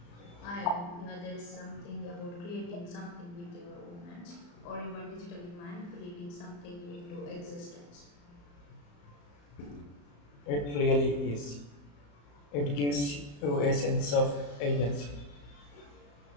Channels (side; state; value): right; late; 35 ms